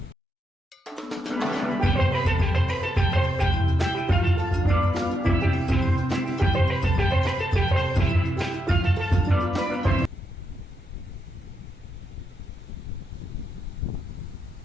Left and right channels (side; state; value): both; normal; correlation 0.82